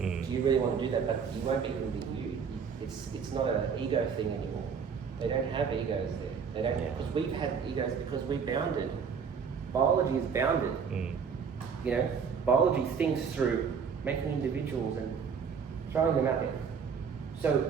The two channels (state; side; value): quieter; left; 6.4 dB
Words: you really want to do that? But you won't be able to be you. It's not an ego thing anymore. They don't have egos there. They don't have, because we've had egos because we bounded. Biology is bounded. Biology thinks through making individuals and throwing them out there. So